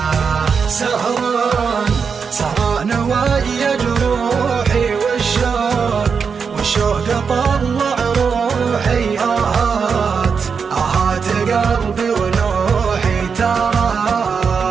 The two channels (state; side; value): quieter; left; 5.9 dB